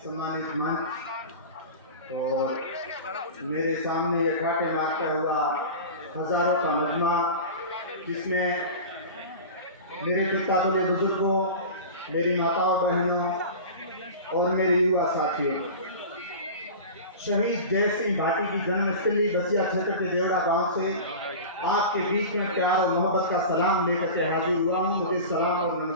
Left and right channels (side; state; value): both; inverted; correlation -0.33